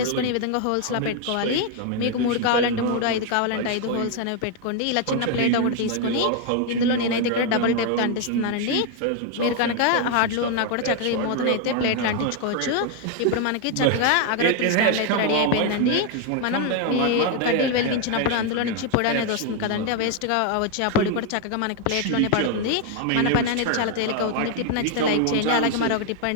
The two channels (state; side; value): different; both; correlation 0.01